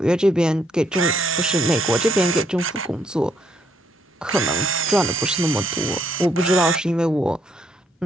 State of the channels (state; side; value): normal; both; correlation 0.71